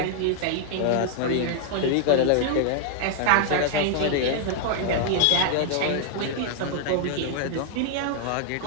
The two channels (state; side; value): different; both; correlation 0.00